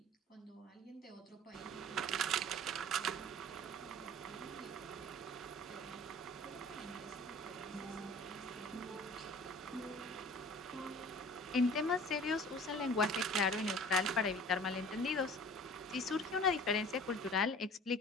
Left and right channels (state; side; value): normal; both; correlation 0.45